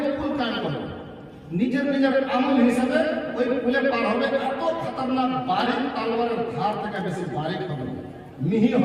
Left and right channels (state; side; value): identical; both; correlation 1.00